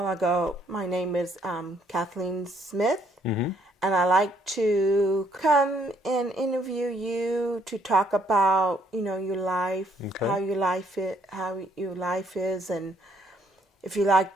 I go, my name is Kathleen Smith. And I like to come and interview you to talk about, your life, okay. how your life is, and if you like,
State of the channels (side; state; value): both; normal; correlation 0.68